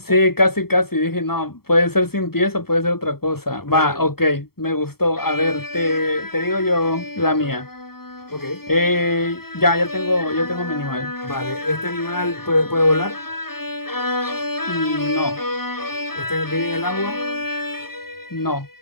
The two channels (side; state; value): right; late; 0.95 ms